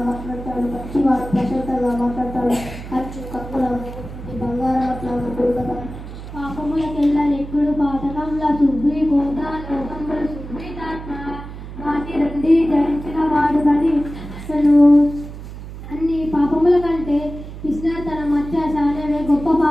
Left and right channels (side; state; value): right; noise; hum, 12 dB below the sound